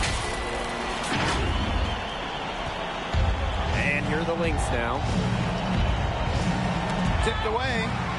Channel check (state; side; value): identical; both; correlation 1.00